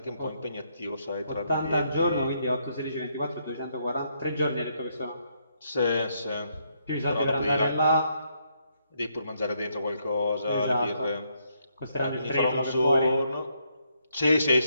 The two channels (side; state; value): both; inverted; correlation -0.75